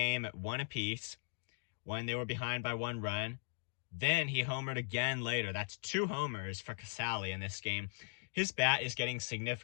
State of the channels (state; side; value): silent; right; digital silence